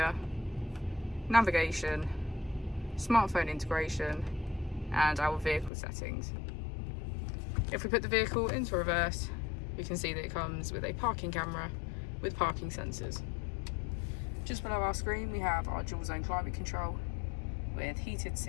navigation, smartphone integration and our vehicle settings. If we put the vehicle into reverse, we can see that it comes with a parking camera with parking sensors. Just below our screen we have our dual zone climate control with heated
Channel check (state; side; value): drops out; right; at 5.7 s